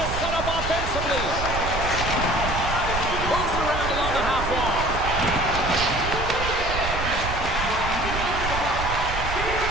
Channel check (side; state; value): right; noise; rumble, 5 dB below the sound